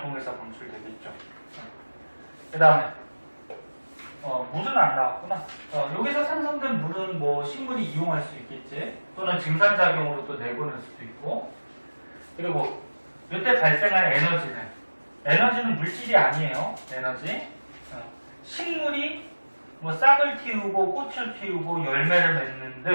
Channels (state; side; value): inverted; both; correlation -1.00